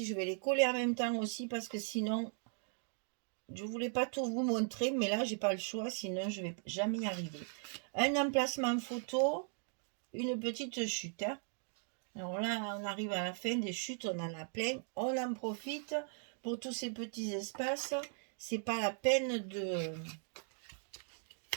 Je vais les coller en même temps aussi parce que sinon, je ne voulais pas tout vous montrer. Mais là, j'ai pas le choix. Sinon, je ne vais jamais y arriver. Un emplacement photo, une petite chute. Hein. Alors là, on arrive à la fin des chutes. On en a plein. On en profite pour tous ces petits espaces. C'est pas la peine de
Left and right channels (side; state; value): left; silent; 52 dB below the other